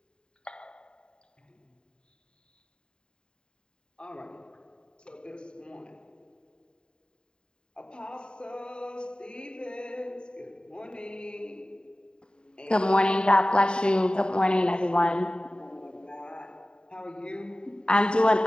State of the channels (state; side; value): late; right; 0.049 ms